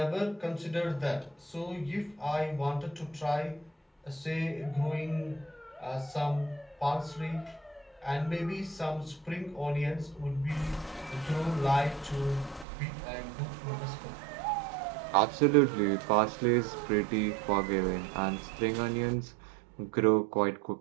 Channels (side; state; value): left; drops out; at 12.7 s